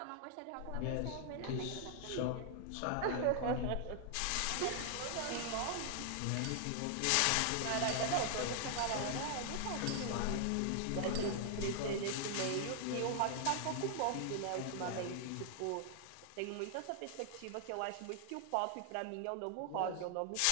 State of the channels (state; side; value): different; both; correlation 0.00